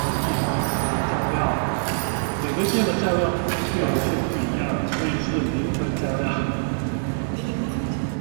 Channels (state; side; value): silent; left; 57 dB below the other